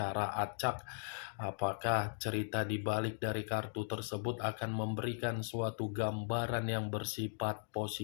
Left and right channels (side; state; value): right; silent; digital silence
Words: acak. Apakah cerita di balik dari kartu tersebut akan memberikan suatu gambaran yang bersifat